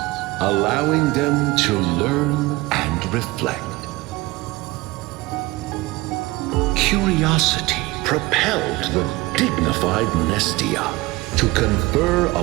allowing them to learn and reflect. Curiosity propelled the dignified Nestia to confer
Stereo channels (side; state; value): left; quieter; 21.1 dB